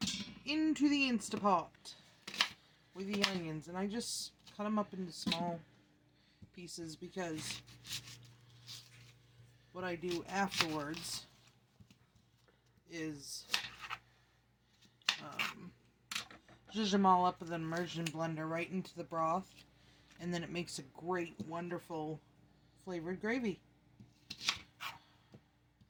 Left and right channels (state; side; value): identical; both; correlation 1.00